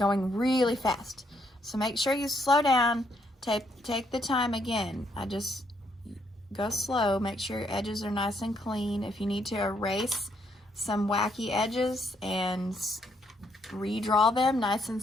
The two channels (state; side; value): normal; both; correlation 0.73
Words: really fast. So make sure you slow down, take the time again. I just go slow, make sure your edges are nice and clean. If you need to erase some wacky edges and redraw them nice and